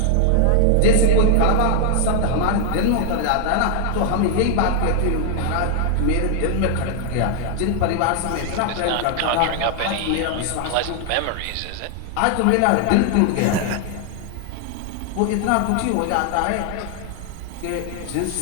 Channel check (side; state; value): both; different; correlation 0.00